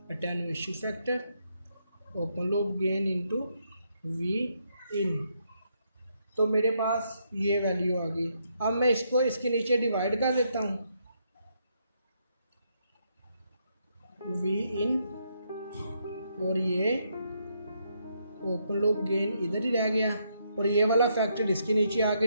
attenuation factor open loop gain into V in. तो मेरे पास ये वैल्यू आ गई। अब मैं इसको इसके नीचे डिवाइड कर देता हूँ वी इन और ये ओपन लूप गेन इधर ही रह गया और ये वाला फैक्टर इसके नीचे आके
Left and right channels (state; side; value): inverted; both; correlation -0.76